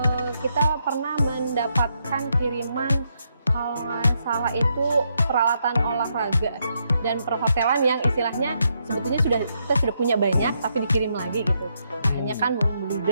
kita pernah mendapatkan kiriman, kalau nggak salah itu peralatan olahraga dan perhotelan yang istilahnya sebetulnya kita sudah punya banyak tapi dikirim lagi gitu. Hanya kan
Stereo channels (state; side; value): inverted; both; correlation -0.78